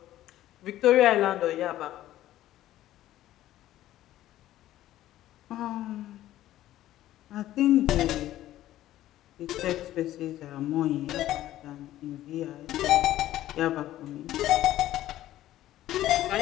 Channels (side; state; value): right; quieter; 13.9 dB